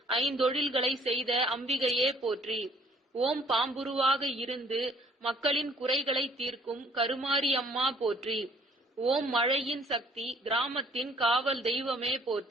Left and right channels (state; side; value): normal; both; correlation 0.60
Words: 5 தொழில்களை செய்த அம்பிகையே போற்றி. ஓம் பாம்புருவாக இருந்து மக்களின் குறைகளை தீர்க்கும் கருமாரி அம்மா போற்றி. ஓம் மழையின் சக்தி கிராமத்தின் காவல் தெய்வமே